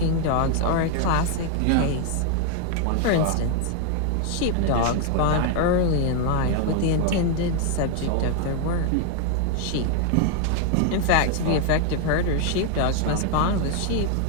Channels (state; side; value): different; both; correlation 0.01